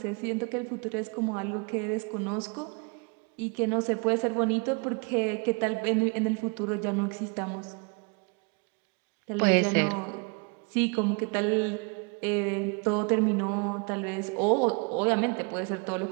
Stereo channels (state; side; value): quieter; left; 33.2 dB